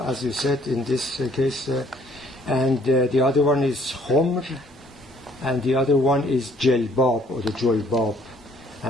you said in this case, and the other one is khumr, and the other one is jilbab or the julbab.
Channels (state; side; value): normal; both; correlation 0.61